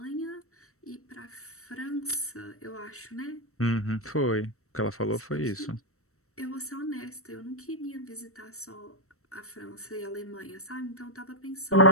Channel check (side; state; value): right; late; 0.64 ms